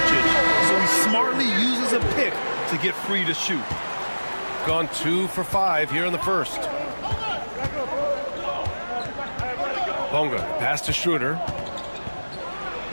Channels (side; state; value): both; inverted; correlation -1.00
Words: so he smartly uses a pick to get free to shoot. Gone 2 for 5 here in the first. Bonga pass to Schroeder.